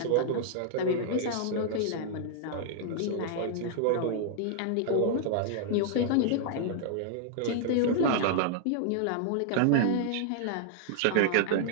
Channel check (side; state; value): both; different; correlation -0.01